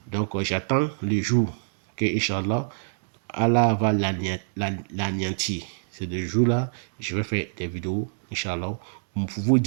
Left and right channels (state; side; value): silent; left; digital silence